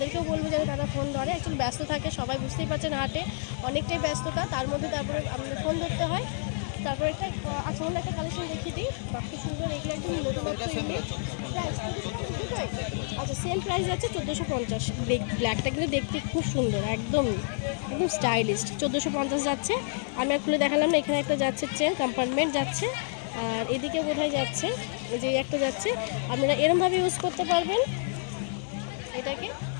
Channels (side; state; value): right; silent; digital silence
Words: বলবো যেন তারা ফোন ধরে, একটু ব্যস্ত থাকে, সবাই বুঝতেই পারছেন হাটে অনেকটাই ব্যস্ততা, তার মধ্যে তারপরে আমাদের ফোন ধরতে হয়। তারপরে একটা আচ্ছা অন্য একটা কালেকশন দেখিয়ে দিই, বাকি সুন্দর, এগুলো একদম নতুন প্রাইস। আচ্ছা সেম প্রাইস আছে 1450। ব্ল্যাকটা কিন্তু দেখতে খুব সুন্দর, একদম একদম স্টাইলিশ। 1450 যাচ্ছে। আমি আর খুলে দেখালাম না, এখানে একটা যাচ্ছে চেন কম্পার্টমেন্ট যাচ্ছে, আর এদিকে বোধহয় যাচ্ছে, এই যে একটা যাচ্ছে। আপনারা এরমভাবে ইউজ করতে পারবেন এটাকে,